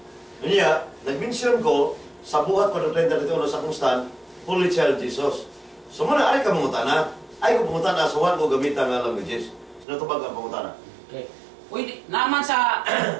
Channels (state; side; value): drops out; left; at 9.9 s